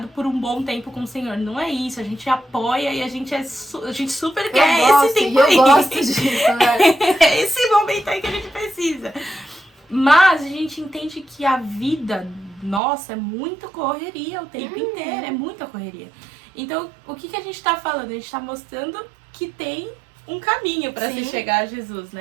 por um bom tempo com o Senhor. Não é isso, a gente apoia e a gente super quer esse tempo aí. Eu gosto disso, né? É esse momento aí que a gente precisa. Mas a gente entende que a vida nossa é muita correria o tempo inteiro, é muita correria. Então, o que a gente tá falando? A gente tá mostrando que tem um caminho pra se chegar a Jesus,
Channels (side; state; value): left; drops out; at 12.8 s